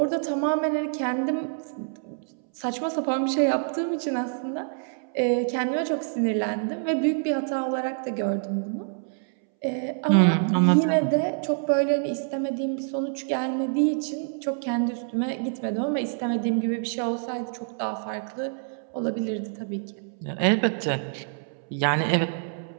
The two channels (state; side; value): silent; left; 61 dB below the other